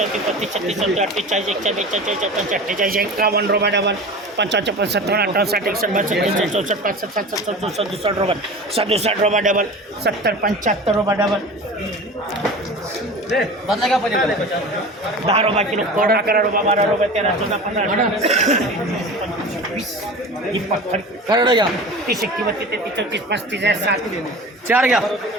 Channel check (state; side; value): normal; both; correlation 0.35